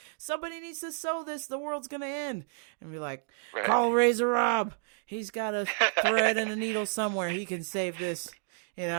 somebody needs to sew this, the world's going to end. And be like, call Razor Rob. He's got a thread and a needle somewhere. He can save this,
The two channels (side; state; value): left; silent; digital silence